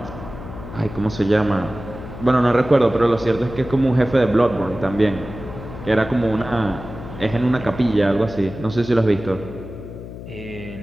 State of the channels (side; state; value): left; noise; hum, 12 dB below the sound